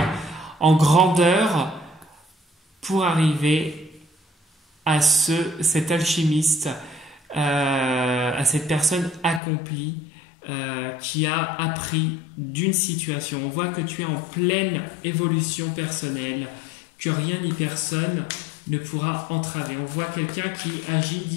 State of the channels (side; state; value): right; drops out; at 9.4 s